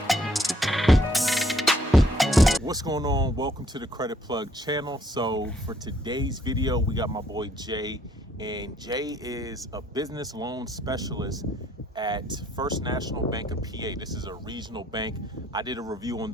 What's going on? Welcome to the Credit Plug channel. So for today's video, we got my boy Jay, and Jay is a business loan specialist at First National Bank of PA. This is a regional bank. I did a review on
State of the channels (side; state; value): both; normal; correlation 0.66